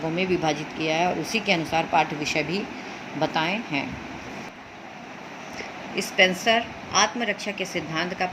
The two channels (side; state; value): both; identical; correlation 1.00